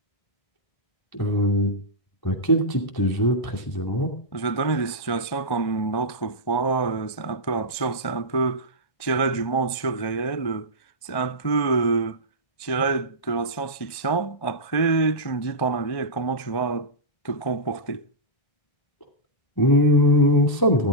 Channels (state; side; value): late; right; 1.2 ms